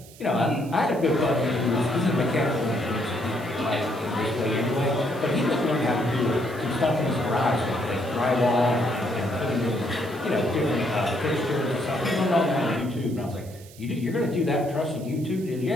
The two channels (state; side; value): noise; right; hiss, 21 dB below the sound